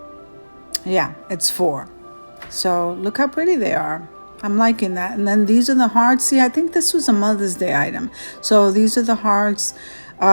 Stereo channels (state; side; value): inverted; both; correlation -1.00